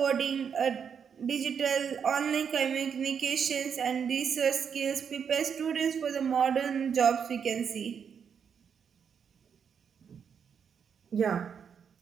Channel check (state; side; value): quieter; left; 7.1 dB